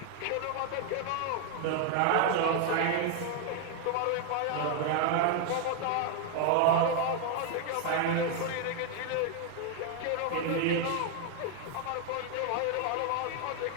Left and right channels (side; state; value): both; different; correlation 0.01